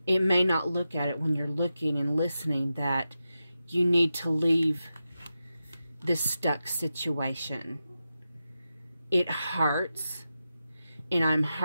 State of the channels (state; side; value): inverted; both; correlation -0.91